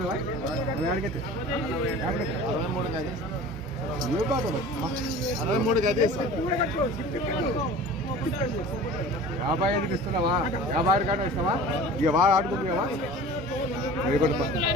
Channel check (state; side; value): normal; both; correlation 0.40